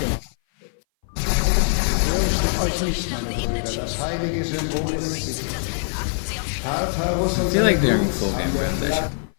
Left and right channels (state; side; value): silent; right; 58 dB below the other